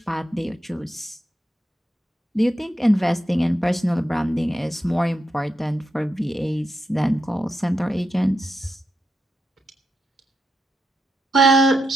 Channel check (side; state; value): both; normal; correlation 0.84